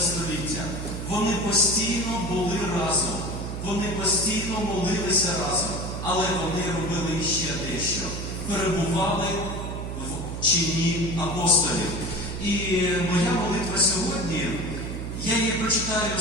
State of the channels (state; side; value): noise; right; hum, 5 dB below the sound